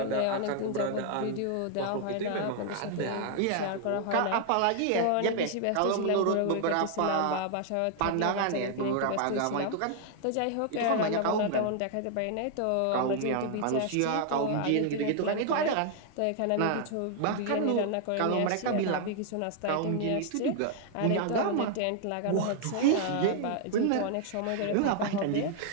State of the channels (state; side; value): different; both; correlation 0.00